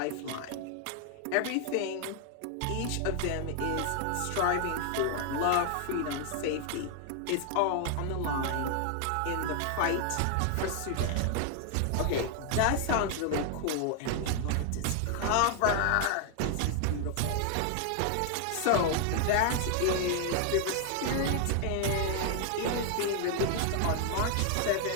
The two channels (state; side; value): different; both; correlation 0.00